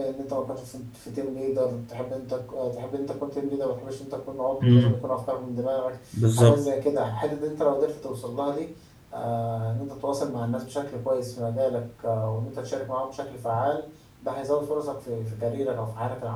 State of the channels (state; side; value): identical; both; correlation 1.00